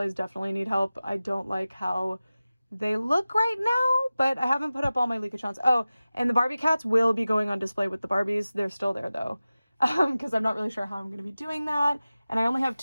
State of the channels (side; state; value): both; inverted; correlation -0.96